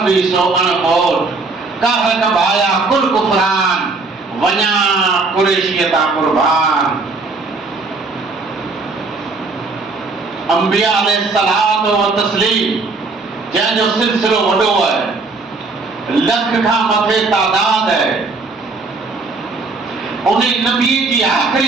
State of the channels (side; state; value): left; quieter; 3.8 dB